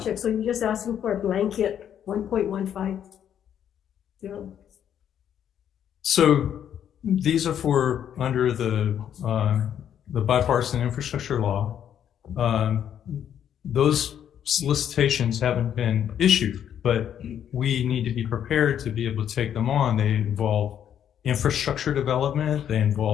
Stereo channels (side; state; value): right; quieter; 9.5 dB